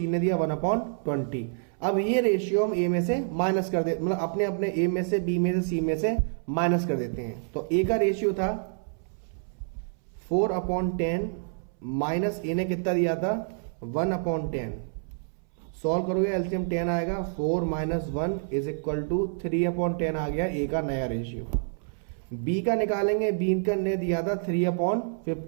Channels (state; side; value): silent; left; 60 dB below the other